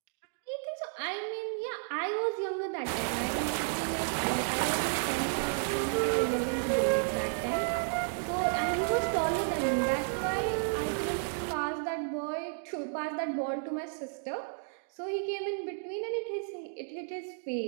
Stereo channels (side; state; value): left; silent; digital silence